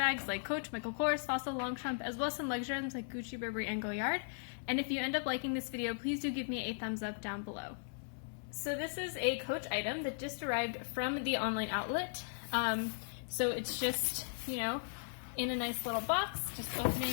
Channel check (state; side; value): silent; right; 53 dB below the other